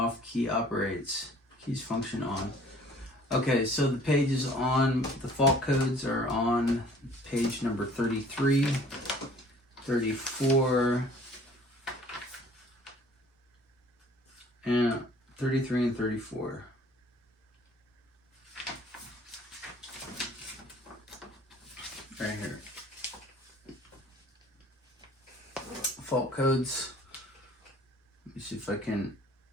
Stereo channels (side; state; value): both; normal; correlation 0.52